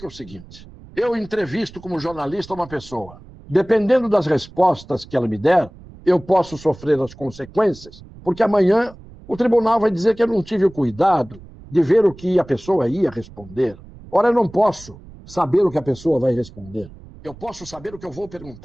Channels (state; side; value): noise; right; rumble, 20 dB below the sound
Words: o seguinte: eu entrevisto como jornalista uma pessoa. Dependendo das respostas que ela me der, eu posso sofrer as consequências, porque amanhã o tribunal vai dizer que eu não tive o cuidado de ver o que a pessoa ia responder. Ora, eu não posso saber o que a pessoa vai responder. Eu posso saber o que eu vou